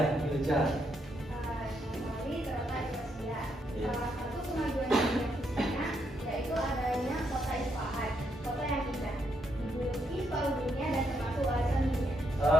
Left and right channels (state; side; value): normal; both; correlation 0.77